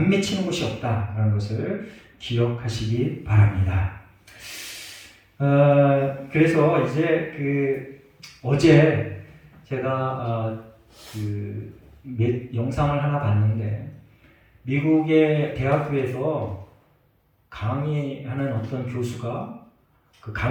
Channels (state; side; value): identical; both; correlation 1.00